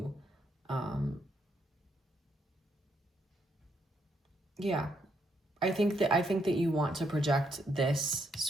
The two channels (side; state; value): both; normal; correlation 0.75